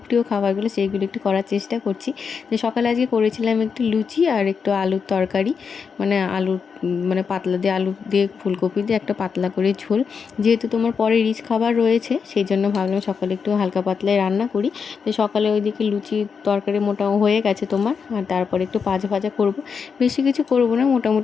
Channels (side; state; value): right; quieter; 6.0 dB